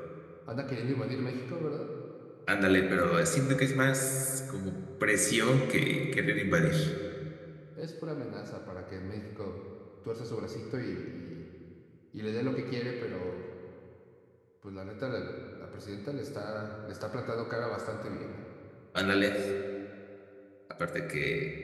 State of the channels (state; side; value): identical; both; correlation 1.00